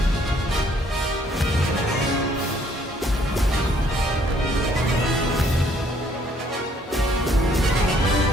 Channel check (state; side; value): normal; both; correlation 0.64